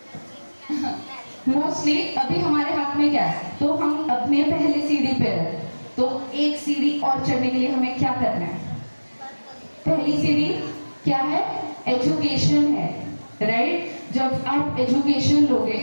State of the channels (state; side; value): inverted; both; correlation -1.00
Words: मोस्टली अभी हमारे हाथ में क्या है, तो हम अपने पहले सीढ़ी पे हैं, तो एक सीढ़ी और चढ़ने के लिए हमें क्या करना है? पहली सीढ़ी क्या है? एजुकेशन है, राइट? जब आप एजुकेशन